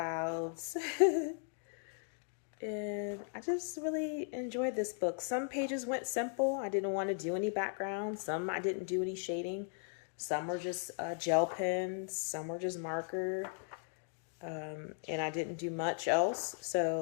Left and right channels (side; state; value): right; silent; 53 dB below the other